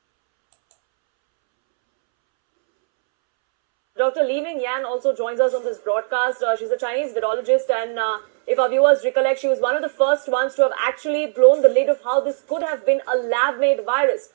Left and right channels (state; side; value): silent; left; 66 dB below the other